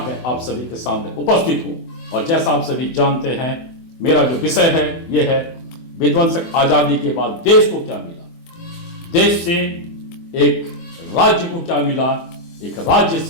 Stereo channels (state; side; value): late; right; 24 ms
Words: में आप सभी के सामने उपस्थित हूं। और जैसा आप सभी जानते हैं, मेरा जो विषय है यह है विध्वंसक आजादी के बाद देश को क्या मिला, देश से एक राज्य को क्या मिला, एक राज्य